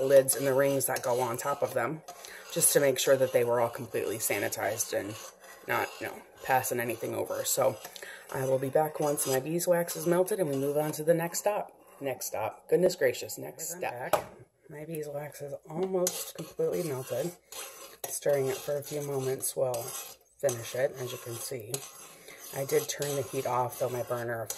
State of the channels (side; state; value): both; identical; correlation 1.00